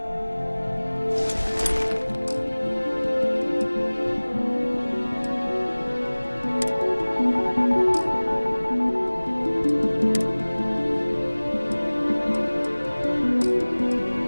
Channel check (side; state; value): both; inverted; correlation -1.00